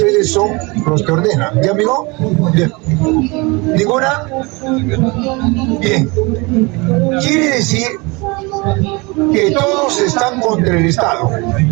son los que ordenan. ¿Ya, amigo? Bien. ¿Ninguna? Bien. Quiere decir que todos están contra el Estado,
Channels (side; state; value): left; quieter; 26.3 dB